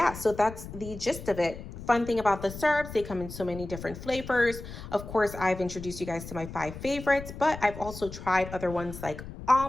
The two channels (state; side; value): noise; left; rumble, 12 dB below the sound